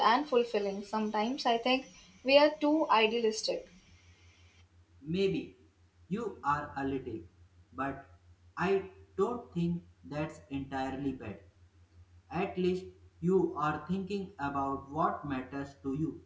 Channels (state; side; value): identical; both; correlation 1.00